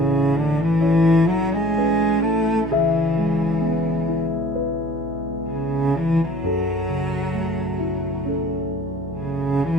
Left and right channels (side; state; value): left; noise; hum, 13 dB below the sound